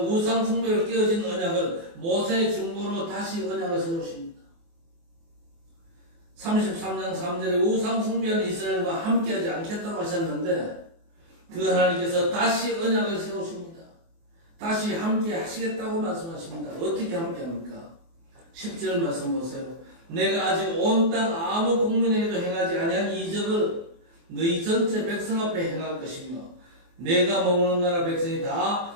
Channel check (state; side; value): late; left; 24 ms